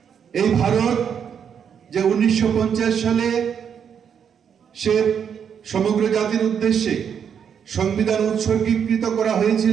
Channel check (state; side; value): quieter; left; 7.7 dB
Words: এই ভারত যে ১৯৫০ সালে সে সমগ্র জাতির উদ্দেশ্যে সংবিধান উৎসর্গীকৃত করা